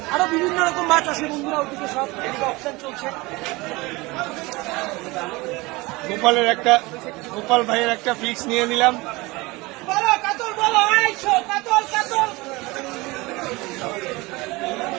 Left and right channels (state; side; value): quieter; left; 22.8 dB